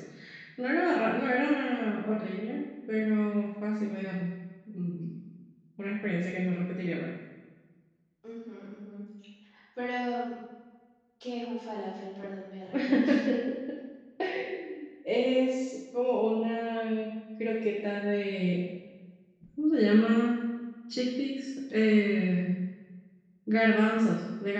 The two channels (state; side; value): identical; both; correlation 1.00